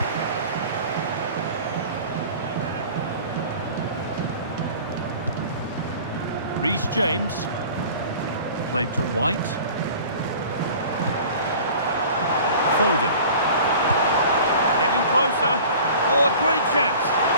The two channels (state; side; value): inverted; both; correlation -0.43